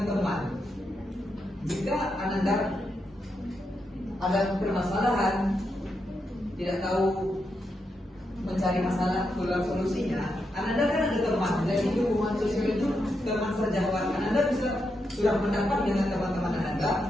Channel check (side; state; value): both; normal; correlation 0.84